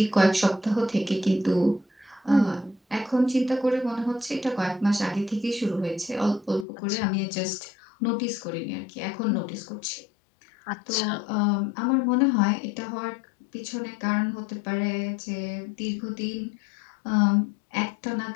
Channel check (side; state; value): right; drops out; at 6.7 s